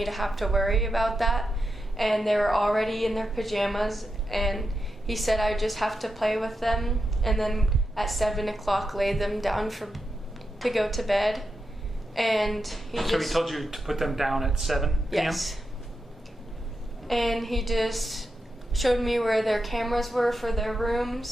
to have to worry about that. And they were already in their pajamas, and he said I just have to play with them and then at 7 o'clock lay them down to go to bed. And he told you to put them down at 7 p.m.? Yes. And he just showed me where their cameras were for their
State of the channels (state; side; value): normal; both; correlation 0.87